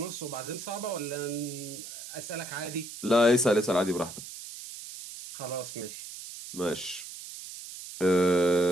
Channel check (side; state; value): right; noise; hiss, 12 dB below the sound